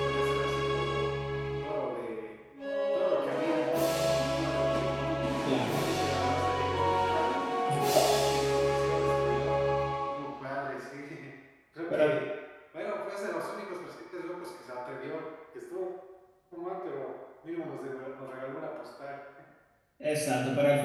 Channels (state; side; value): identical; both; correlation 1.00